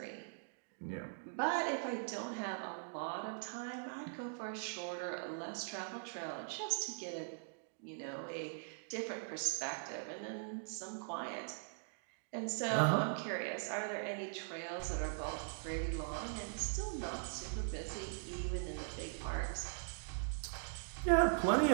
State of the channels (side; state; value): left; silent; digital silence